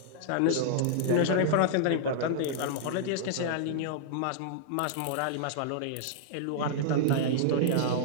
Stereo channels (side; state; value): both; different; correlation -0.01